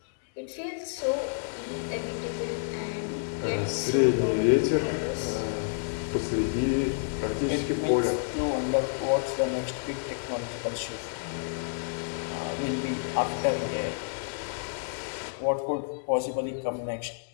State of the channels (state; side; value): silent; right; digital silence